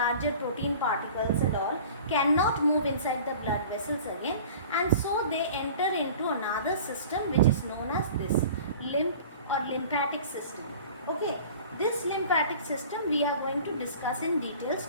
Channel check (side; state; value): both; inverted; correlation -0.43